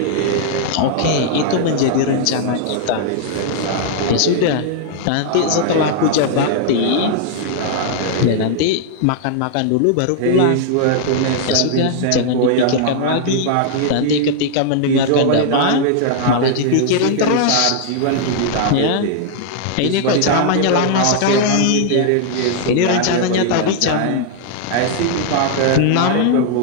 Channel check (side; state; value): both; different; correlation -0.01